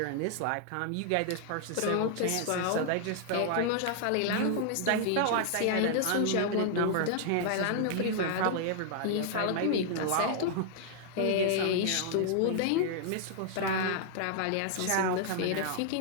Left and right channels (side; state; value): both; different; correlation -0.01